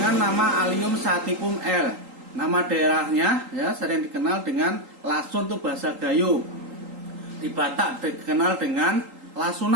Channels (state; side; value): late; left; 3.8 ms